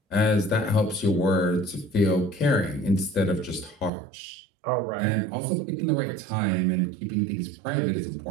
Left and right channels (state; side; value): drops out; left; at 3.9 s